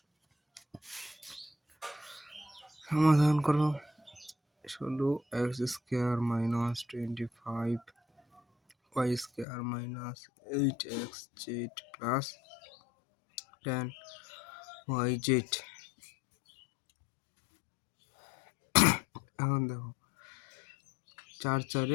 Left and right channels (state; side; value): drops out; right; at 9.5 s